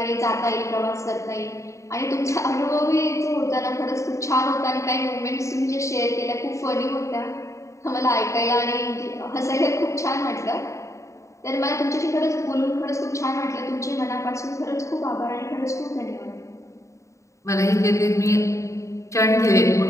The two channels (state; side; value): late; right; 0.15 ms